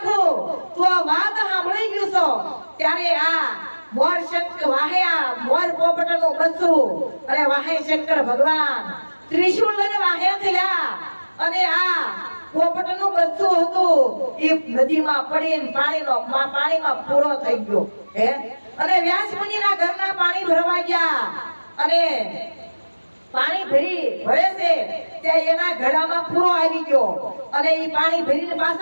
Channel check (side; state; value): both; inverted; correlation -1.00